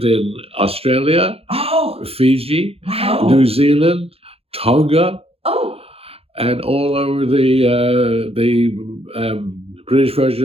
in Australia, Oh, Fiji, wow. New Zealand, Tonga, Oh. and all over the British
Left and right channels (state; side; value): late; left; 0.28 ms